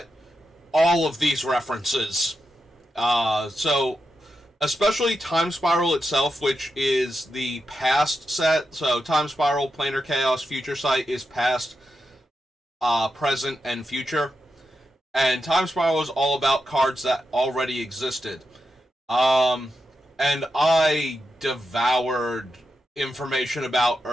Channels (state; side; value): normal; both; correlation 0.87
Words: all of these references. So especially Time Spiral itself, which is the past set. So Time Spiral, Planar Chaos, Future Sight is past, present, and future. And Time Spiral is all about cards that already existed. And I devoured information about